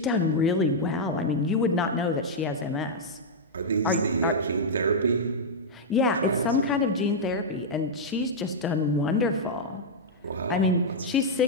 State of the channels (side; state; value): both; normal; correlation -0.05